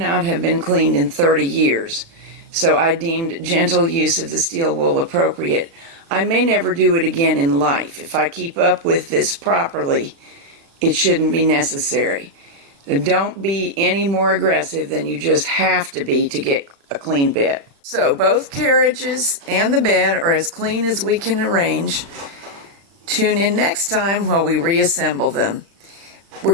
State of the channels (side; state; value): left; late; 35 ms